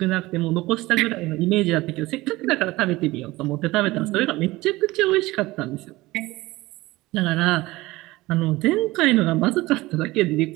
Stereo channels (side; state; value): left; quieter; 19.6 dB